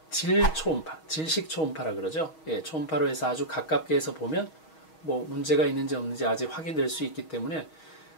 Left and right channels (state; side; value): late; right; 6.3 ms